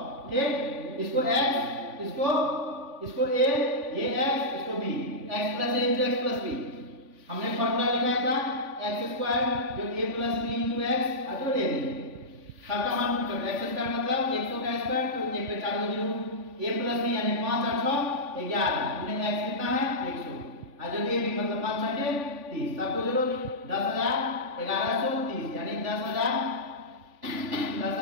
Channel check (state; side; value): late; left; 3.5 ms